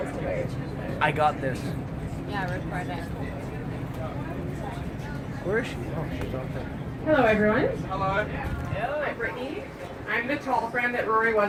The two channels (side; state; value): both; identical; correlation 1.00